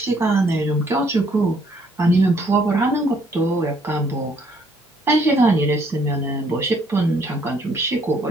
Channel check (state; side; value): normal; both; correlation 0.66